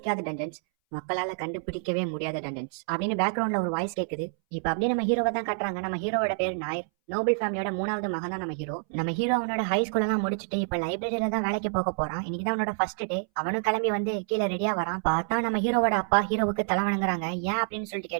டஞ்சன்ஸ், மக்களால கண்டுபிடிக்கவே முடியாத டஞ்சன்ஸ் அப்படின்னு பேக்ரவுண்ட்ல ஒரு வாய்ஸ் கேக்குது. இப்ப அப்படியே நம்ம ஹீரோவை தான் காட்டுறாங்க. நம்ம ஹீரோவோட பேர் நாயர். நோபல் ஃபேமிலியோட 3வது மகன் தான் நம்ம ஹீரோ. நம்ம ஹீரோ அவனோட ஹை ஸ்கூல் எல்லாம் முடிச்சுட்டு இப்ப லைப்ரரியில தான் வேலைக்கு போக போறான். இன்னைக்குதான் அவனோட ஃபர்ஸ்ட் டே. அவனும் கிளம்பி வந்து கீழே ரெடியா வரான். பார்த்தா நம்ம ஹீரோவோட அப்பா ஹீரோவுக்கு தலை வணங்குறாங்க. ஏன் அப்படின்னு சொல்லிட்டு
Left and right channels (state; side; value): silent; left; 59 dB below the other